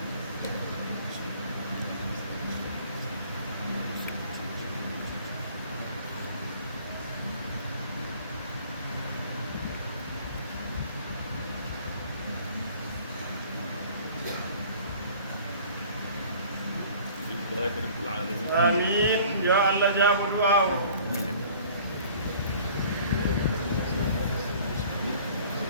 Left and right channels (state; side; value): inverted; both; correlation -0.50